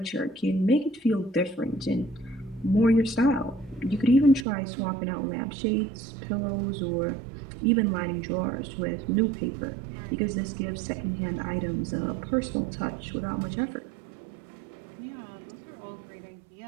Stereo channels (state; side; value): drops out; left; at 4.5 s